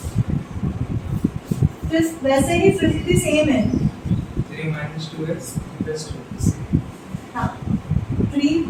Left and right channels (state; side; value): identical; both; correlation 1.00